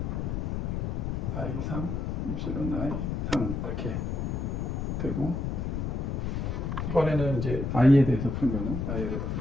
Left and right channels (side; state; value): left; noise; rumble, 1 dB below the sound